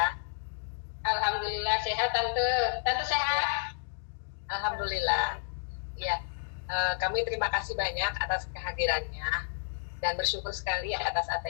Alhamdulillah sehat Tante. Tante sehat? Alhamdulillah. Ya, kami terima kasih banyak atas kehadirannya dan bersyukur sekali atas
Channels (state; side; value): silent; right; digital silence